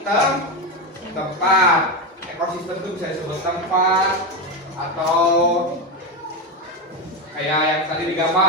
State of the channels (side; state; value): both; normal; correlation 0.13